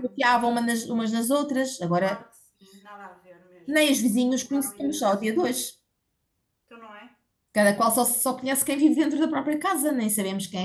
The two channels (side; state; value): both; identical; correlation 1.00